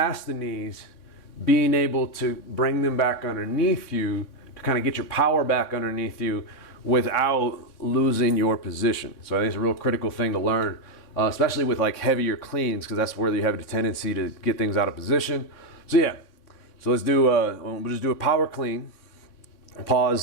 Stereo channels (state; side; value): late; right; 3.6 ms